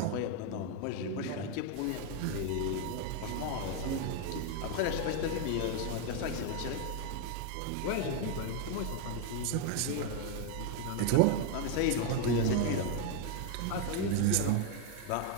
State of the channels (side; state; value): both; different; correlation 0.01